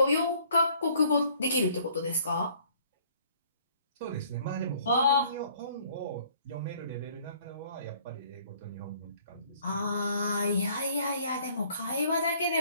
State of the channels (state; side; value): inverted; both; correlation -0.59